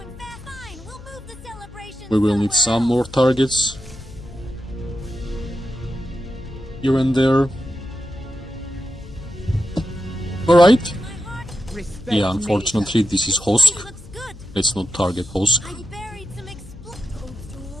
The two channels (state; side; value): noise; left; hum, 18 dB below the sound